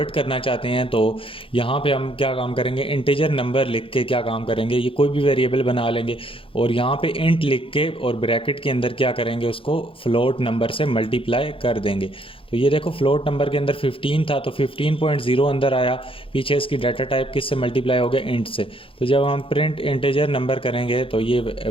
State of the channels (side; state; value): right; late; 0.26 ms